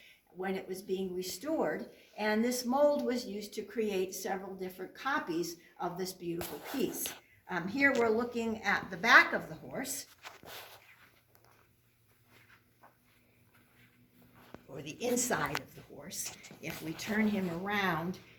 when it was being restored, and this mold was used to create several different copies of this beautiful piece. Here we're looking at the back of the horse, or the inside of the horse. If we turn him around,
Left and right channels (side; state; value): both; identical; correlation 1.00